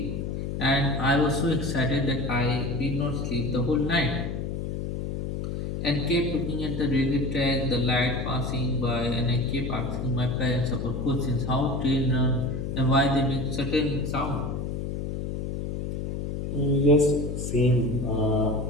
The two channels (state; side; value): noise; left; hum, 4 dB below the sound